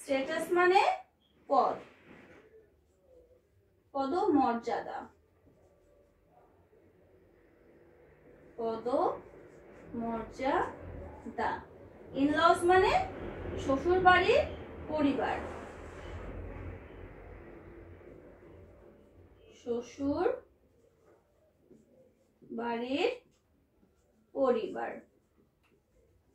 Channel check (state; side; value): identical; both; correlation 1.00